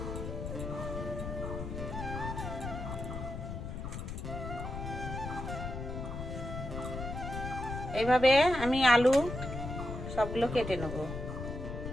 এইভাবে আমি আলু সবগুলো কেটে নেব।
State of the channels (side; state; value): left; noise; rumble, 6 dB below the sound